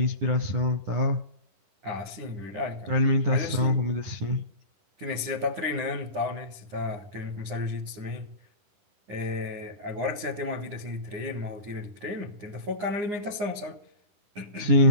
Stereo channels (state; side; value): late; left; 9.8 ms